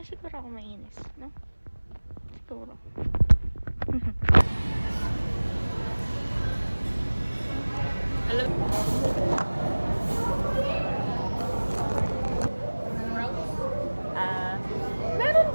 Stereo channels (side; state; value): both; inverted; correlation -1.00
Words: siguro ako mainis, no? Siguro. Meron